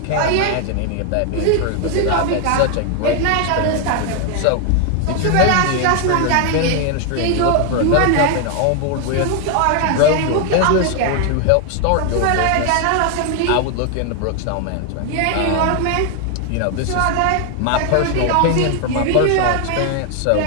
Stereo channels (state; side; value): different; both; correlation 0.00